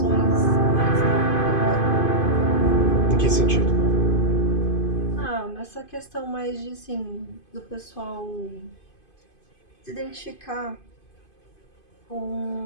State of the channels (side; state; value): right; late; 2.5 ms